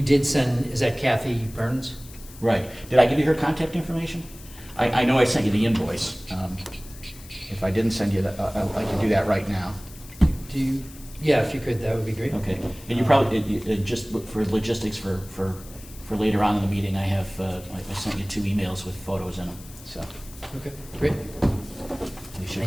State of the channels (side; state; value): left; noise; hiss, 19 dB below the sound